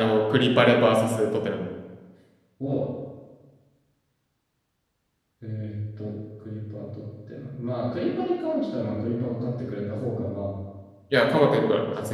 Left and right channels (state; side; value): identical; both; correlation 1.00